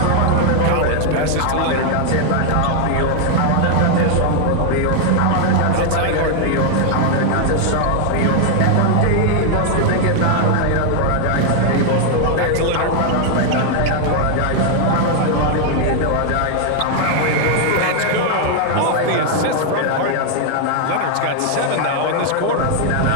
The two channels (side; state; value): both; different; correlation 0.00